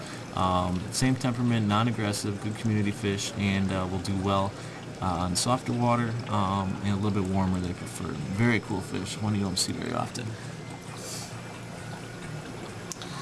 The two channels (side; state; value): both; identical; correlation 1.00